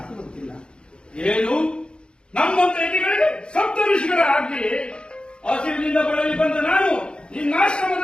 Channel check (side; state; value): right; late; 0.053 ms